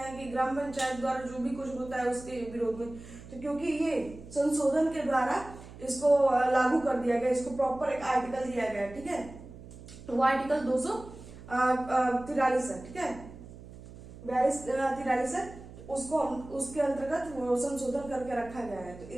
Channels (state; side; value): noise; right; hum, 16 dB below the sound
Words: कि ग्राम पंचायत द्वारा जो भी कुछ होता है उसके विरोध में। तो क्योंकि ये संशोधन के द्वारा इसको लागू कर दिया गया, इसको प्रॉपर एक आर्टिकल दिया गया, ठीक है। तो वो आर्टिकल 243 है, ठीक है, 43 है, उसको हम उसके अंतर्गत संशोधन करके रखा गया है। तो